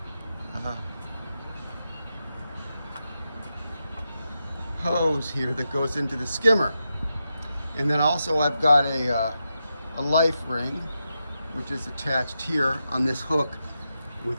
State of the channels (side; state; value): both; inverted; correlation -0.87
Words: hose here that goes into the skimmer. And then also I've got a life ring, which is attached here on this hook